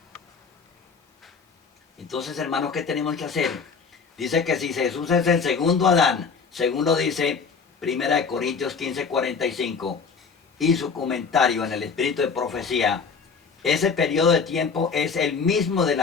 Entonces, hermanos, ¿qué tenemos que hacer? Dice que si Jesús es el segundo Adán, según lo dice 1 Corintios 15:45, y su comentario en el espíritu de profecía, ese periodo de tiempo es el mismo de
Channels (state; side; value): quieter; right; 5.4 dB